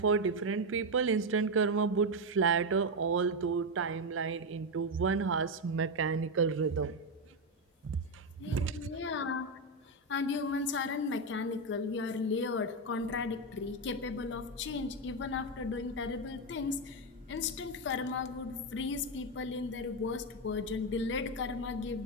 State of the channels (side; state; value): both; normal; correlation 0.07